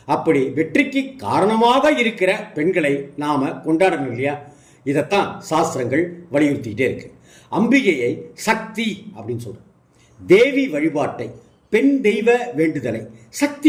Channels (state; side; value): identical; both; correlation 1.00